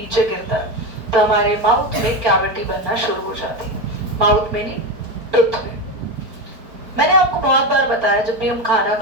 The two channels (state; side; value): late; left; 4.6 ms